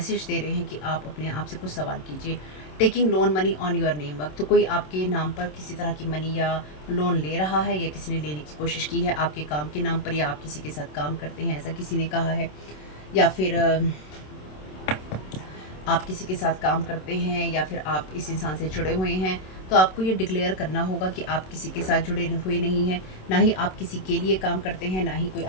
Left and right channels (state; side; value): late; right; 27 ms